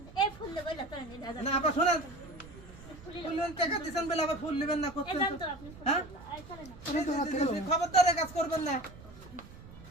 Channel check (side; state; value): right; noise; rumble, 18 dB below the sound